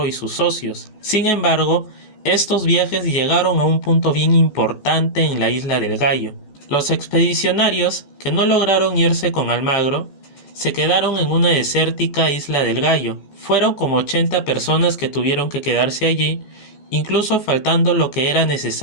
y sus socios. Sin embargo, estos viajes llegaron a un punto bien importante en la isla del Gallo. Los expedicionarios, que no lograron irse con Almagro, se quedaron en una desértica isla del Gallo. Fueron como 80 personas que tuvieron que quedarse allí, incluso faltando lo que era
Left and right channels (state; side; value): late; right; 14 ms